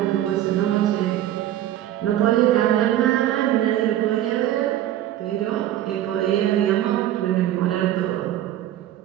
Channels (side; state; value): left; quieter; 12.6 dB